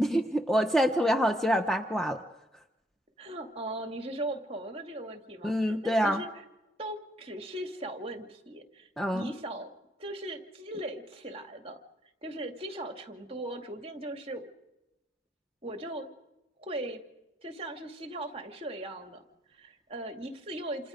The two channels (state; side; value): normal; both; correlation 0.73